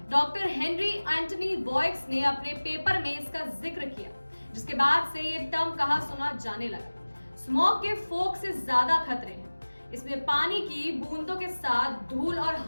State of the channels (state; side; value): inverted; both; correlation -1.00